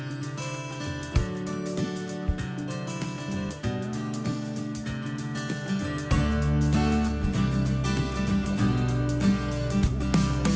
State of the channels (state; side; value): identical; both; correlation 1.00